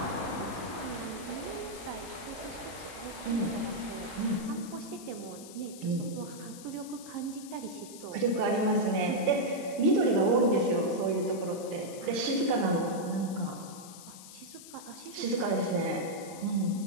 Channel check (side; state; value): left; noise; hiss, 15 dB below the sound